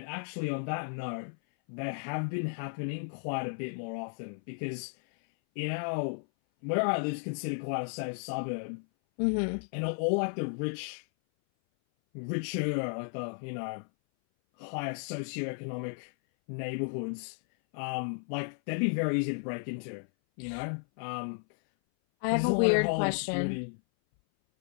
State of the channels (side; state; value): right; silent; 55 dB below the other